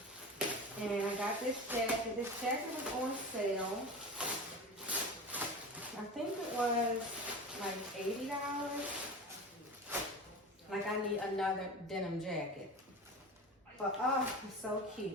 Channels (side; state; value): both; normal; correlation 0.30